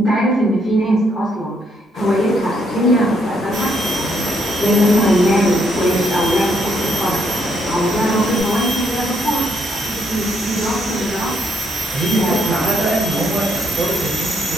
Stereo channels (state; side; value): normal; both; correlation 0.73